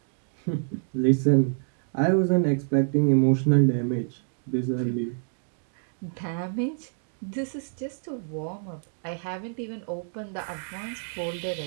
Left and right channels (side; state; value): left; silent; digital silence